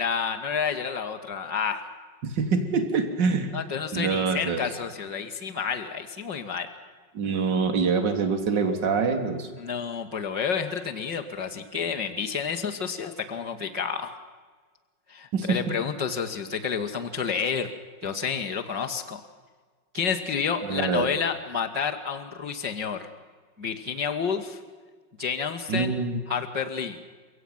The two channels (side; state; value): left; late; 5.4 ms